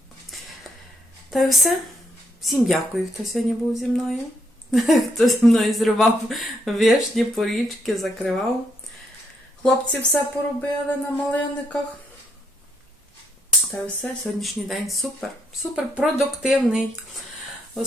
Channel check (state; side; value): normal; both; correlation 0.75